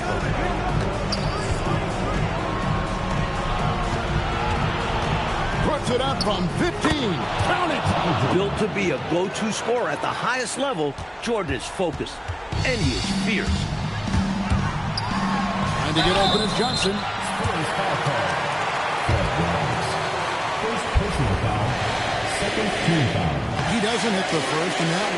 Puts it up from 15. Count it. Built to be a go-to scorer at the highest level, Jordan is focused, and he is fierce. Trying to get open is Johnson. First foul call. First personal foul. Second team foul. He doesn't hit the first, and that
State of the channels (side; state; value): both; identical; correlation 1.00